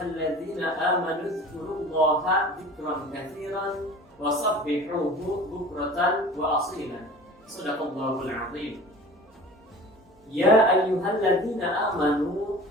amanu dzkurullaha dzikran katsiran wasabbihuhu bukratan wa asilan. Shadaqallahul azim. Ya ayyuhalladzina amanu,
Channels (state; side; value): normal; both; correlation 0.41